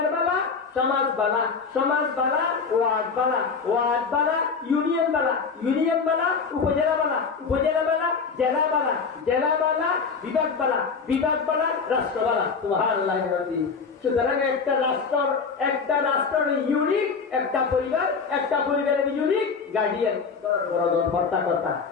বালা সমাজ বালা ওয়ার্ড বালা ইউনিয়ন বালা উপজেলা বালা জেলা বালা বিভাগ বালা রাষ্ট্র বালা সুবহানাল্লাহ সুতরাং একটা রাষ্ট্রের ইউনিক, একটা পরিবারের ইউনিক গার্ডিয়ান কর্তা।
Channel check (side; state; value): right; quieter; 5.3 dB